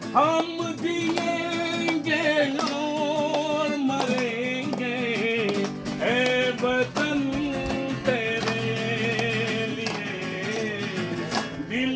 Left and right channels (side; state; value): both; identical; correlation 1.00